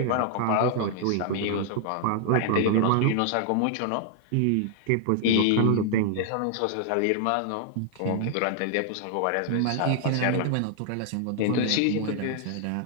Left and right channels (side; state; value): both; different; correlation 0.00